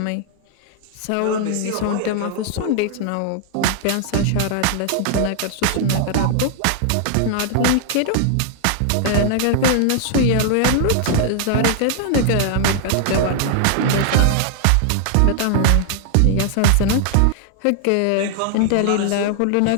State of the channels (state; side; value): different; both; correlation 0.00